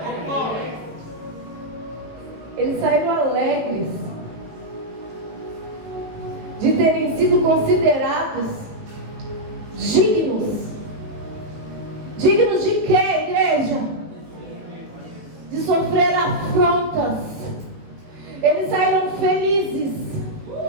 Eles saíram alegres de terem sido considerados dignos. Dignos de quê, igreja? De sofrer afrontas. Eles saíram felizes,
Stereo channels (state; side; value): late; left; 18 ms